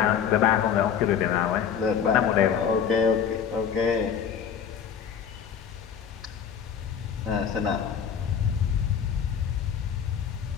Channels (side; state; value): right; quieter; 7.8 dB